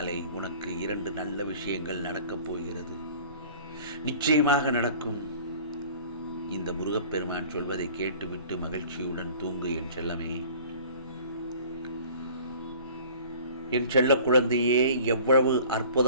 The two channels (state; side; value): inverted; both; correlation -0.47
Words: உனக்கு 2 நல்ல விஷயங்கள் நடக்கப் போகிறது. நிச்சயமாக நடக்கும். இந்த முருகப்பெருமான் சொல்வதை கேட்டுவிட்டு மகிழ்ச்சியுடன் தூங்கு என் செல்லமே. என் செல்ல குழந்தையே, எவ்வளவு